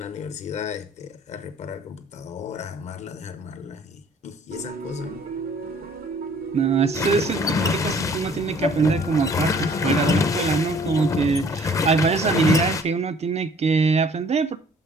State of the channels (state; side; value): normal; both; correlation 0.56